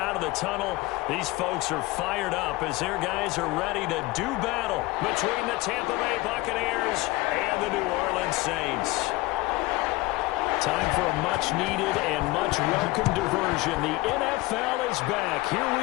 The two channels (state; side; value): quieter; right; 20.8 dB